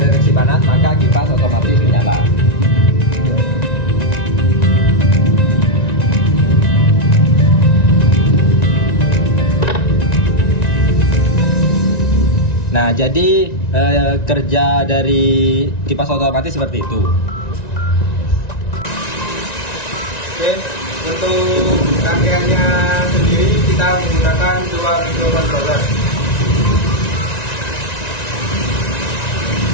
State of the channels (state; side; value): late; right; 1.9 ms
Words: panas, maka kipas otomatis menyala. Nah, jadi kerja dari kipas otomatis seperti itu. Oke, untuk rangkaiannya sendiri kita menggunakan 2 microcontroller.